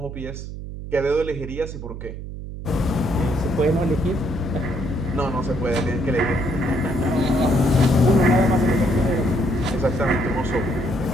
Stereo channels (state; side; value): noise; right; hum, 9 dB below the sound